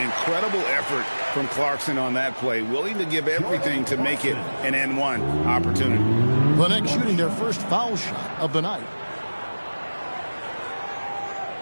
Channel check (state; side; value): inverted; both; correlation -1.00